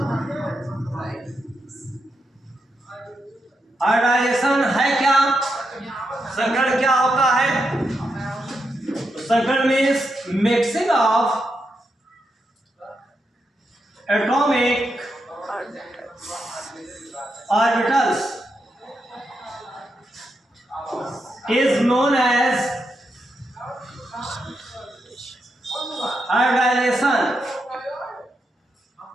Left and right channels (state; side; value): normal; both; correlation 0.84